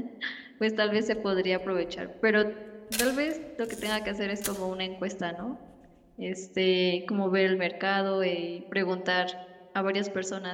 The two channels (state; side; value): identical; both; correlation 1.00